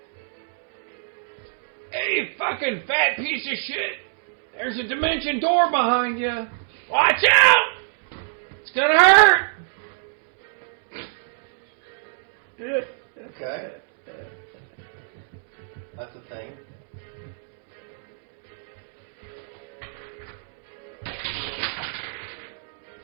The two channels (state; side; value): silent; left; 62 dB below the other